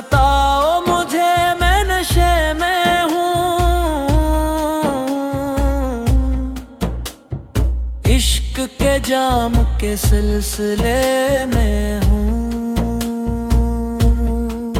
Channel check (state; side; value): identical; both; correlation 1.00